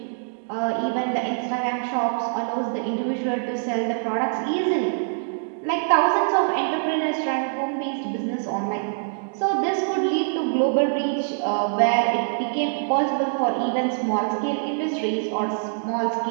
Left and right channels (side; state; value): left; silent; digital silence